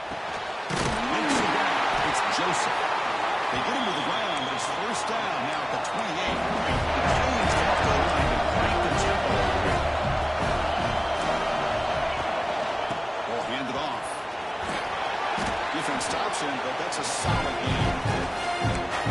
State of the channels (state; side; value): identical; both; correlation 1.00